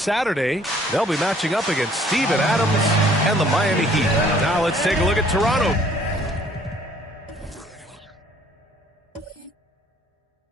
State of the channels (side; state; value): both; normal; correlation 0.59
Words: they'll be matching up against Steven Adams and the Miami Heat. Now let's take a look at Toronto.